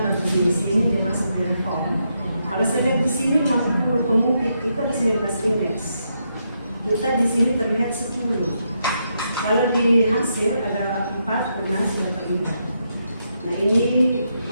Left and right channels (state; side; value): inverted; both; correlation -0.80